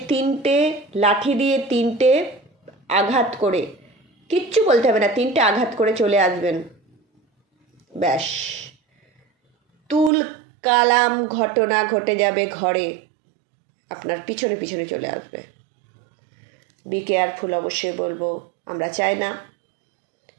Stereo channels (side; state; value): left; drops out; at 10.1 s